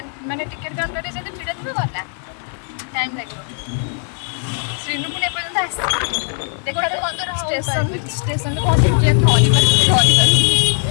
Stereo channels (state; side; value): silent; right; 56 dB below the other